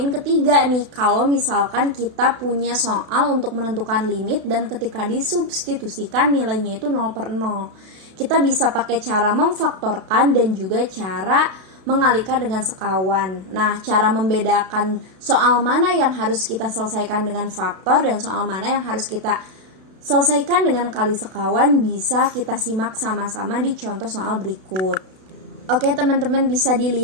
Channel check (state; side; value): late; left; 32 ms